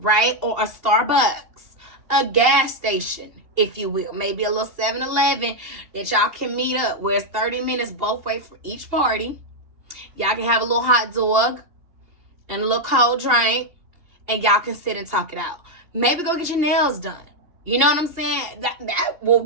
Or a Starbucks, a gas station, if you will. Maybe a little 7-Eleven that y'all can meet up where it's 30 minutes both ways for each party. Y'all can have a little hot dog and a little cold drink, and y'all can sit and talk it out. Maybe go get your nails done. You know what I'm saying? That will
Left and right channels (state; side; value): late; left; 2.8 ms